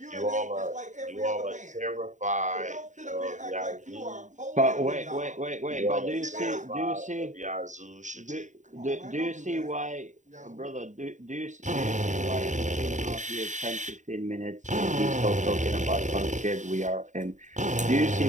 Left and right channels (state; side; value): late; left; 0.36 ms